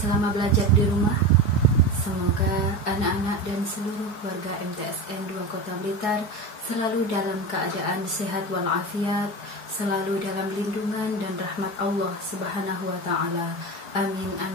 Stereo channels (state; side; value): late; right; 4.7 ms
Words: belajar di rumah? Semoga anak-anak dan seluruh warga MTSN 2 Kota Blitar selalu dalam keadaan sehat walafiat, selalu dalam lindungan dan rahmat Allah Subhanahu wa Ta'ala. Amin